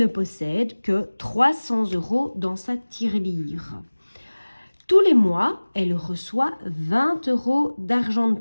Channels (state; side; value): inverted; both; correlation -1.00